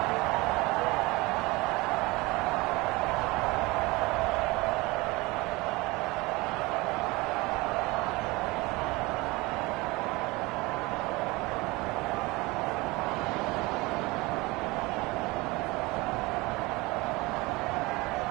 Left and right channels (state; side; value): quieter; left; 23.0 dB